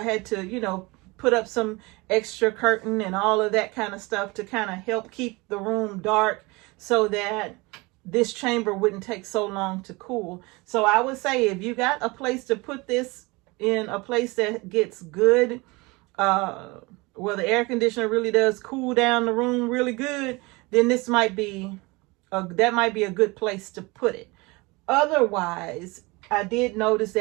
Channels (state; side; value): quieter; left; 24.6 dB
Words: had to, you know, put up some extra curtain and all of that kind of stuff to kind of help keep the room dark, so that this chamber wouldn't take so long to cool. So I would say, if you got a place to put this in, a place that gets good, where the air conditioner really does cool down the room really good, then this might be that might be a good place to put it. Otherwise, I did notice